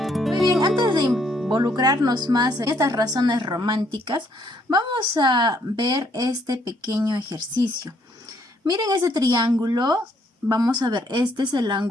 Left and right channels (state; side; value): normal; both; correlation 0.69